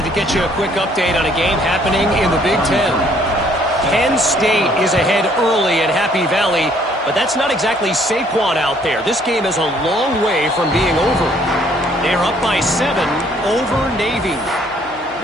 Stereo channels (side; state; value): both; normal; correlation 0.62